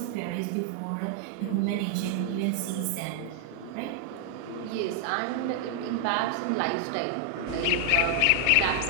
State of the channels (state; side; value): different; both; correlation 0.00